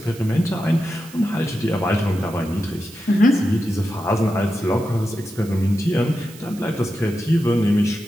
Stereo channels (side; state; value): right; noise; hiss, 20 dB below the sound